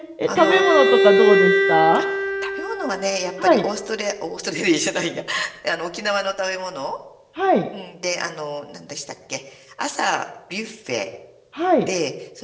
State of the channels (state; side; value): identical; both; correlation 1.00